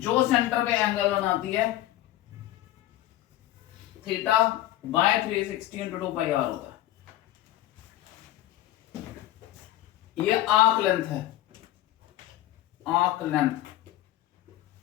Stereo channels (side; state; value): right; quieter; 14.8 dB